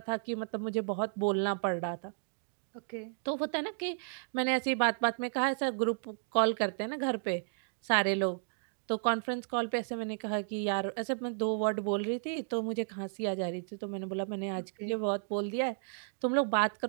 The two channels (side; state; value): left; silent; digital silence